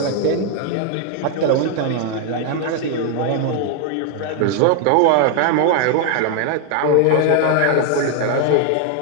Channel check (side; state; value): both; different; correlation 0.00